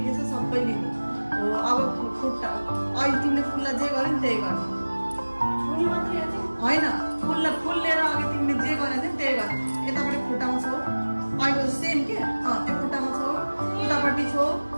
छ सबै लिने। हो अब खुट्टा अहिले तिमीले फुललाई जे गर्यो नि त्यही गर्ने। होइन फुल लिएर अघि तिमीले जे गरेको थियौ त्यही गर। यतापट्टि खुट्टामा छौ अहिले सेम के त्यो खुट्टामा छौ अगाडि छो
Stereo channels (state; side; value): inverted; both; correlation -1.00